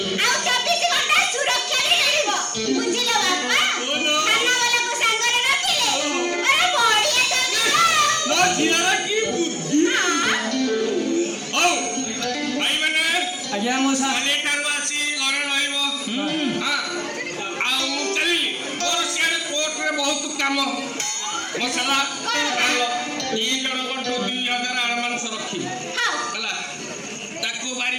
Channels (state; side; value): identical; both; correlation 1.00